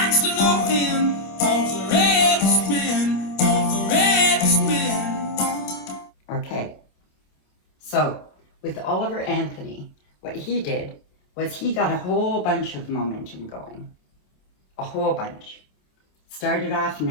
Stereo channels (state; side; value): late; right; 27 ms